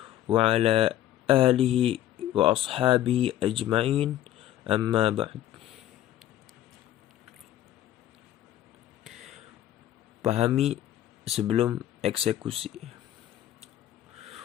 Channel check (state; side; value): quieter; right; 12.6 dB